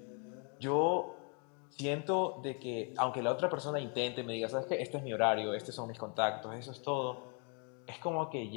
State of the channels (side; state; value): right; quieter; 38.6 dB